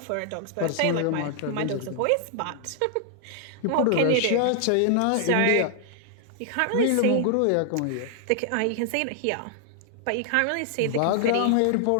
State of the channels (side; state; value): both; different; correlation 0.00